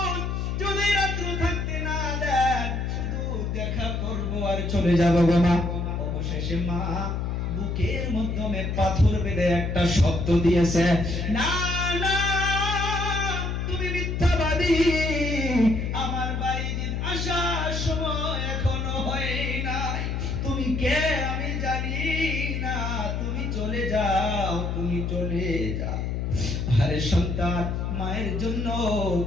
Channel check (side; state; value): left; noise; hum, 1 dB below the sound